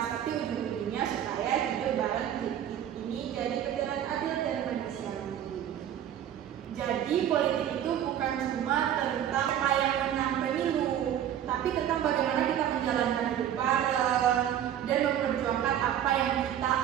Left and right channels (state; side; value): quieter; left; 10.4 dB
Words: tapi ujung-ujungnya supaya hidup bareng ini jadi perjalanan adil dan manusiawi. Jadi politik itu bukan cuma tentang apa yang menang pemilu, tapi tentang bagaimana kita menjalankan hidup bareng dan memperjuangkan apa yang kita